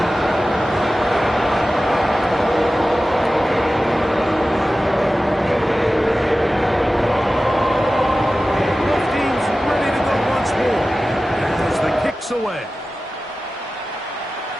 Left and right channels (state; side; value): normal; both; correlation 0.95